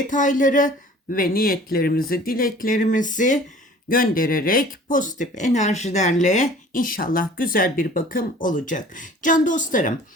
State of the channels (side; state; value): both; normal; correlation 0.48